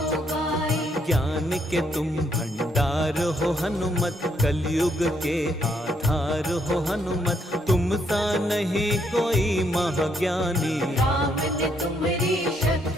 गाए, ज्ञान के तुम भंडार हो हनुमत, कलयुग के आधार हो हनुमत, तुम सा नहीं कोई महाज्ञानी। राम ने तुम्हारी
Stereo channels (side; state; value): both; normal; correlation 0.72